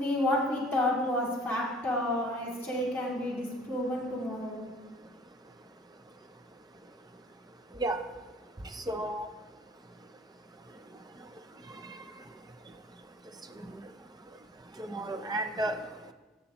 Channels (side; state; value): both; normal; correlation 0.51